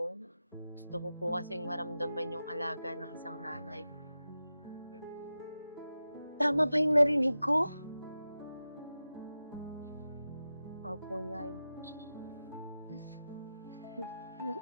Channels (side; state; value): both; inverted; correlation -0.92